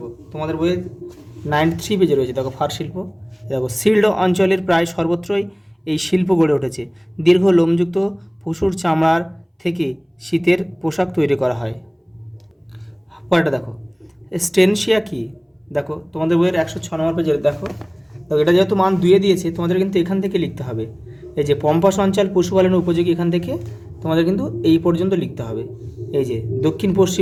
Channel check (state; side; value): identical; both; correlation 1.00